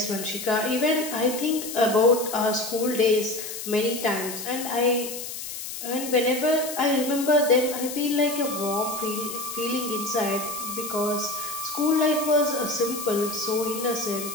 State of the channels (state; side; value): noise; left; hiss, 8 dB below the sound